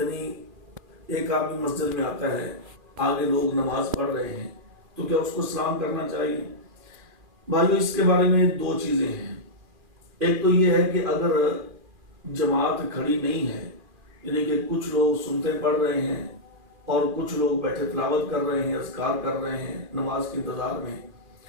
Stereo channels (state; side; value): late; left; 2.4 ms